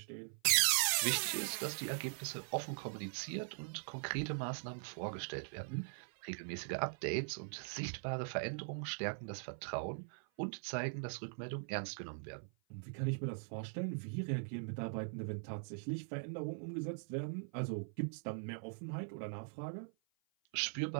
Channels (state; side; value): silent; left; 50 dB below the other